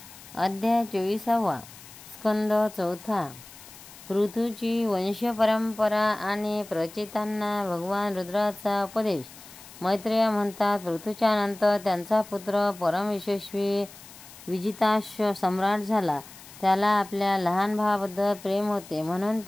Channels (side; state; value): left; noise; hiss, 19 dB below the sound